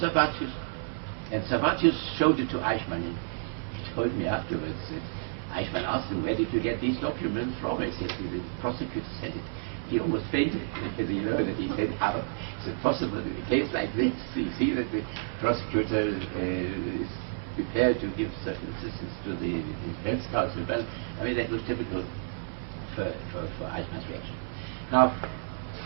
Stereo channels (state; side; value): silent; left; 58 dB below the other